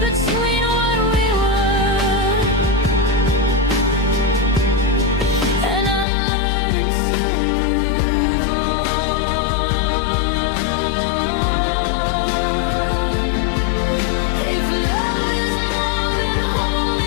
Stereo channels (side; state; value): right; drops out; at 6.1 s